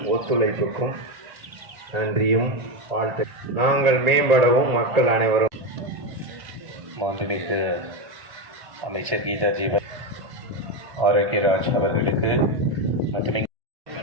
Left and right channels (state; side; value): late; left; 1.8 ms